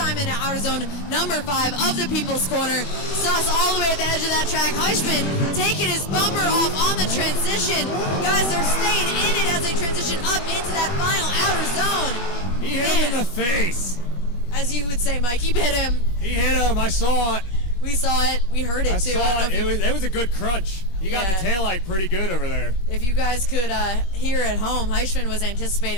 into outer zone number 5 of the People's Corner. Suss all the way at the edge of that track. Heichman taking his bumper off on the transition. Guys, they're staying in it as they transition up into that final outer zone. He hit him in the face. As you would say, Mike, he hit him. He hit him. I saw it. We saw it. We heard it too. I saw it. It was a good crunch. He got the taillight pretty good over there. If you guys could hear at home, Heichman was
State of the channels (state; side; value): late; right; 21 ms